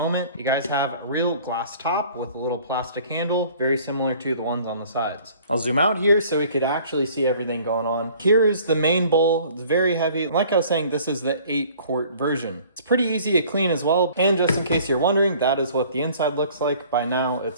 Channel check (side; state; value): both; inverted; correlation -0.52